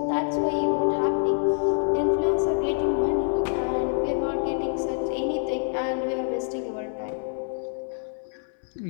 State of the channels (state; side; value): silent; right; 61 dB below the other